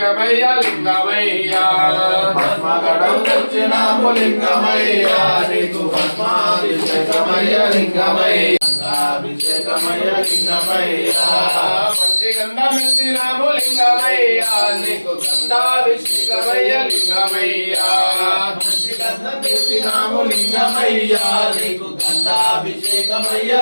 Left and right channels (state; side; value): inverted; both; correlation -1.00